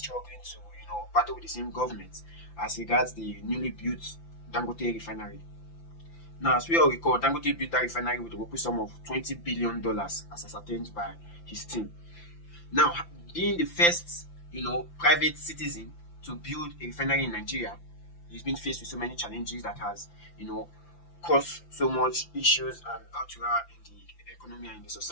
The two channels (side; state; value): right; late; 5.9 ms